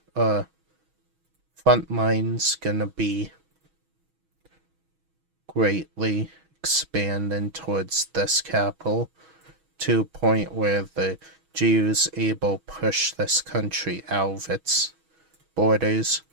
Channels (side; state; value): left; late; 6.2 ms